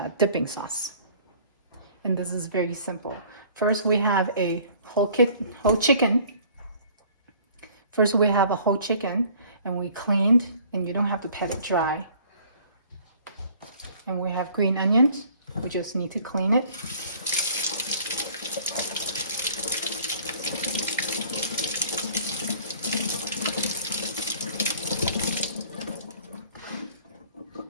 dipping sauce. And this is very simple. First we have a whole chicken. First we have a whole chicken, and we cleaned, and you don't have to pat it dry. And we have green onions. We just need to clean it.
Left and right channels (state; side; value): inverted; both; correlation -0.53